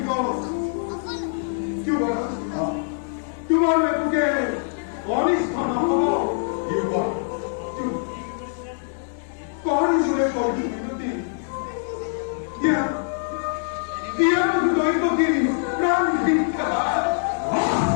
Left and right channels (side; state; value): right; silent; digital silence